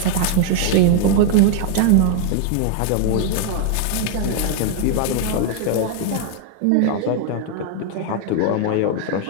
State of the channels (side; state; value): both; different; correlation 0.00